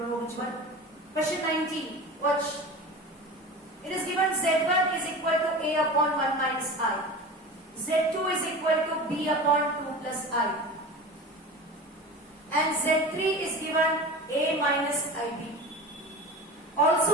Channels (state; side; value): normal; both; correlation 0.33